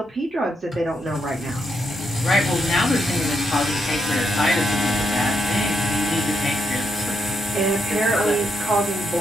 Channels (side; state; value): both; normal; correlation 0.79